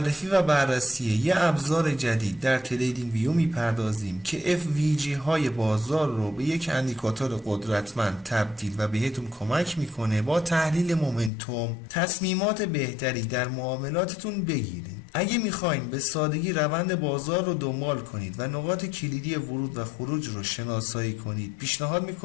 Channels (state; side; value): drops out; right; at 11.3 s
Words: و بررسی یه ابزار جدید در تریدینگ ویو میپردازیم که FVG های بازار رو به یک اندیکاتور قدرتمند تبدیل و بهتون کمک میکنه با تحلیل مومنتوم تصمیمات بهتری در معاملاتتون بگیرید. اگه میخواین به سادگی روند بازار رو دنبال کنید و نقاط کلیدی ورود و خروج رو شناسایی کنید، پیشنهاد